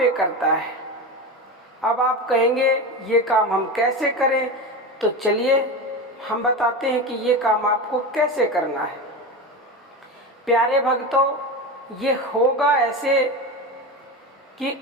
करता है। अब आप कहेंगे ये काम हम कैसे करें, तो चलिए हम बताते हैं कि ये काम आपको कैसे करना है। प्यारे भक्तों, ये होगा ऐसे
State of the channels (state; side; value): normal; both; correlation 0.22